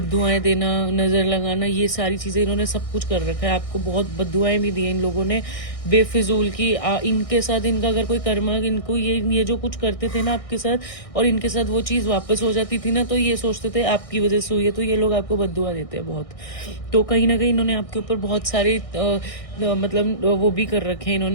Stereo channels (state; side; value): late; right; 1.6 ms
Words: देना, नज़र लगाना, ये सारी चीज़ें इन्होंने सब कुछ कर रखा है। आपको बहुत बद्दुआएं भी दी हैं इन लोगों ने बेफिजूल की। इनके साथ इनका अगर कोई कर्मा, इनको ये जो कुछ करते थे ना आपके साथ, और इनके साथ वो चीज़ वापस हो जाती थी ना, तो ये सोचते थे आपकी वजह से हुई है, तो ये लोग आपको बद्दुआ देते हैं बहुत। तो कहीं ना कहीं इन्होंने आपके ऊपर बहुत सारे मतलब वो भी कर रखे हैं,